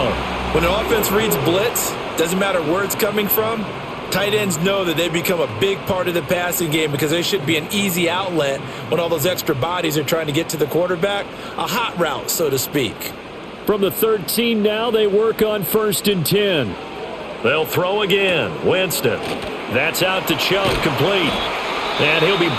When an offense reads blitz, doesn't matter where it's coming from, tight ends know that they become a big part of the passing game because they should be an easy outlet when all those extra bodies are trying to get to the quarterback. A hot route, so to speak. From the 13 now, they work on 1st and 10. They'll throw again. Winston. That's out to Chubb, complete. And he'll be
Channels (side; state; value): both; identical; correlation 1.00